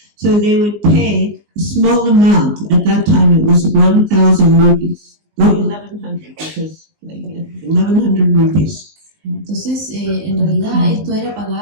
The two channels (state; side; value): late; left; 19 ms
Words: So they would pay a small amount. At that time it was 1,000 rupees. No, 1,100 because 1,100 rupees. Entonces, en realidad esto era